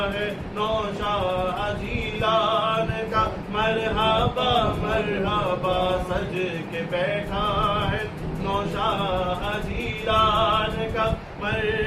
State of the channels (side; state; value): both; identical; correlation 1.00